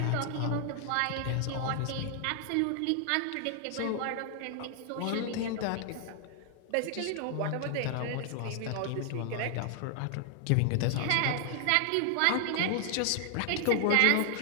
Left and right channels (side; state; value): both; different; correlation 0.00